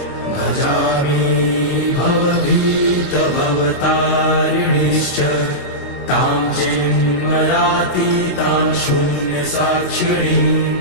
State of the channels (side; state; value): right; late; 22 ms